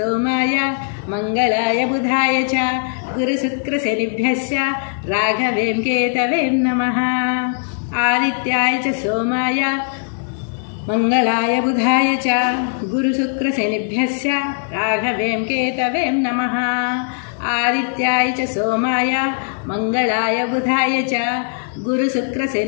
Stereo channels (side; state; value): right; silent; digital silence